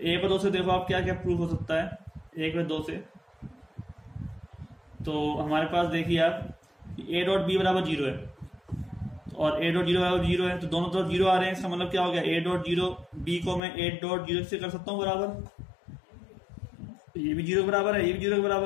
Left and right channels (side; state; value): right; drops out; at 13.6 s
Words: व 2 से देखो आप क्या क्या प्रूफ हो सकता है, 1 व 2 से। तो हमारे पास देखिए आप ए डॉट बी बराबर 0 है और ए डॉट 0 बराबर 0 है, तो दोनों तरफ 0 आ रहे हैं। इसका मतलब क्या हो गया, ए डॉट 0 बी को मैं ए डॉट 0 से कर सकता हूँ बराबर, ये भी 0 बराबर है, ये भी 0 के